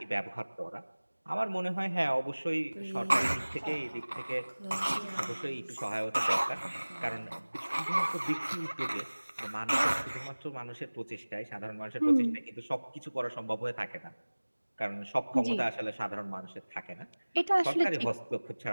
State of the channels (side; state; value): both; inverted; correlation -1.00